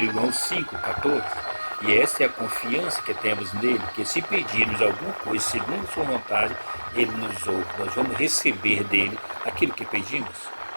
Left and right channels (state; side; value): inverted; both; correlation -1.00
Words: João 5:14. E essa é a confiança que temos nele, que se pedirmos alguma coisa segundo sua vontade, ele nos ouve. Nós vamos receber dele aquilo que pedimos.